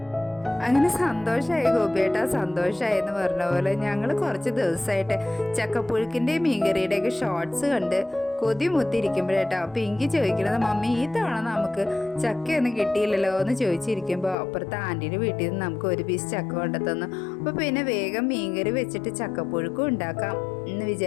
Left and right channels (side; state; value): right; drops out; at 14.4 s